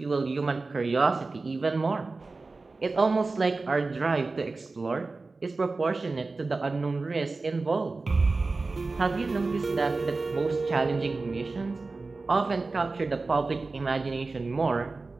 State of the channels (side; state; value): left; quieter; 3.7 dB